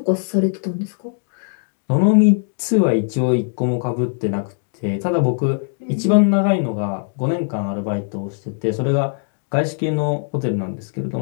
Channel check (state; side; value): silent; right; digital silence